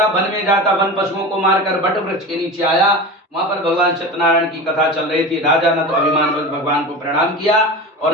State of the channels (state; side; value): normal; both; correlation 0.30